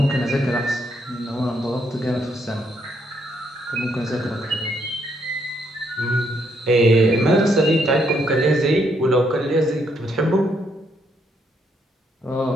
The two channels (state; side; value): normal; both; correlation 0.74